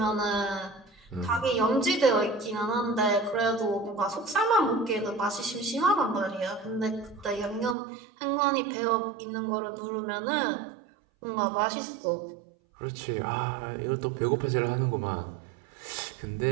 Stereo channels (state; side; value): drops out; left; at 7.8 s